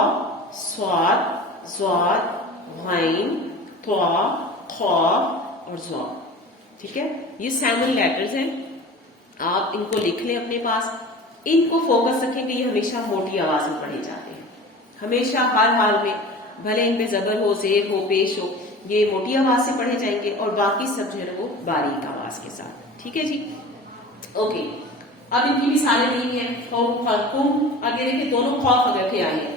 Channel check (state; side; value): normal; both; correlation 0.38